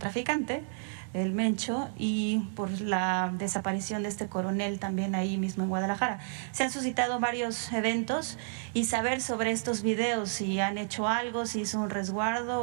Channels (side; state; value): left; silent; digital silence